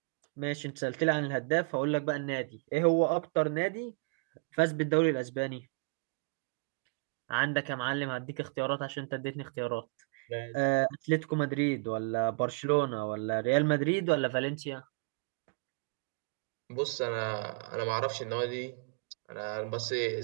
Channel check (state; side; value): quieter; left; 35.7 dB